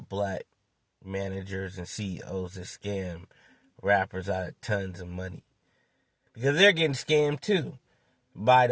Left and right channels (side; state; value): both; identical; correlation 1.00